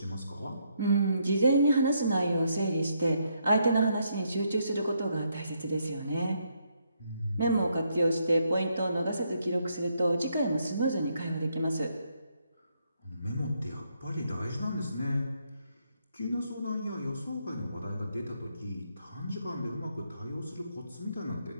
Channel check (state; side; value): inverted; both; correlation -0.75